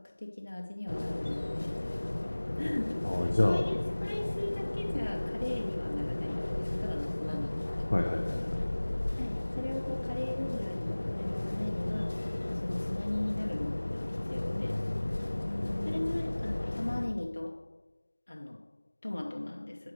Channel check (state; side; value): inverted; both; correlation -1.00